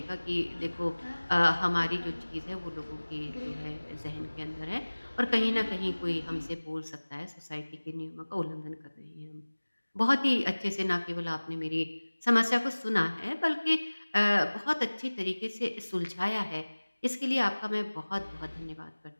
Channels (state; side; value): inverted; both; correlation -1.00